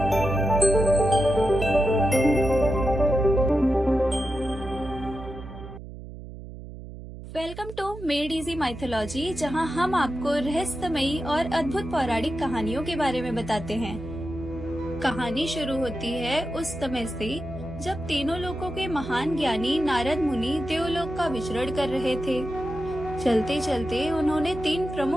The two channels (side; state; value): right; noise; hum, 13 dB below the sound